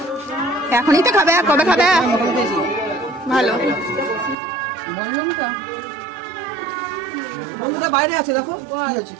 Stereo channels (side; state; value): left; drops out; at 4.4 s